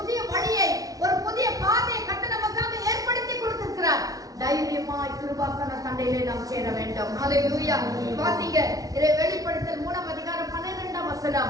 வழியை, ஒரு புதிய பாதையை கர்த்தர் நமக்காக ஏற்படுத்தி கொடுத்திருக்கிறார். தைரியமாய் கிருபாசன தண்டையிலே நாம் சேர வேண்டும். ஹalleluya. வாசிங்க வெளிப்படுத்தல் 3:12.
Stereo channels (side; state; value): left; late; 0.18 ms